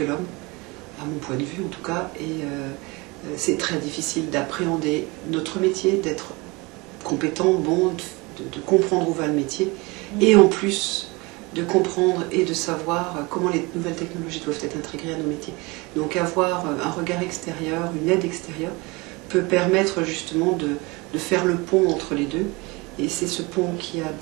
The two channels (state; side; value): quieter; left; 25.4 dB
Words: l'homme, à mon point de vue en tout cas, et c'est très difficile d'appréhender notre métier, d'être compétent, bon, de comprendre où va le métier, et en plus de comprendre et de savoir comment les nouvelles technologies doivent être intégrées à nos métiers. Donc avoir un regard extérieur, une aide extérieure, peut permettre justement de faire le pont entre les deux. Et c'est ce pont qui a